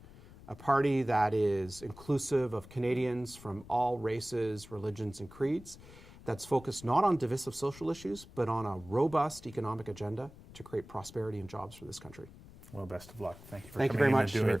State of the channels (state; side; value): noise; left; rumble, 19 dB below the sound